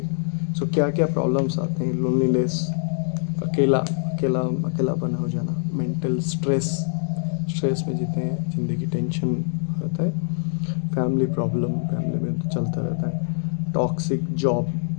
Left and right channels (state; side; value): silent; right; digital silence